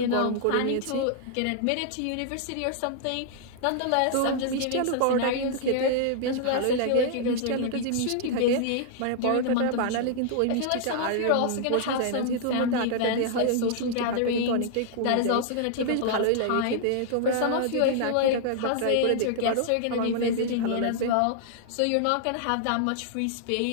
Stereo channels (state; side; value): different; both; correlation -0.01